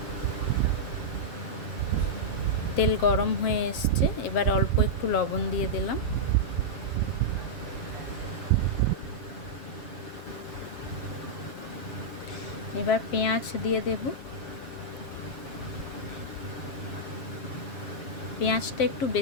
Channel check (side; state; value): right; late; 7.1 ms